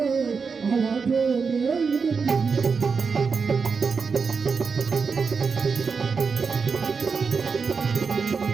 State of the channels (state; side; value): quieter; left; 5.3 dB